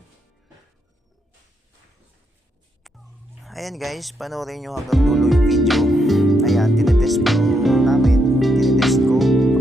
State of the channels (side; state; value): both; normal; correlation 0.79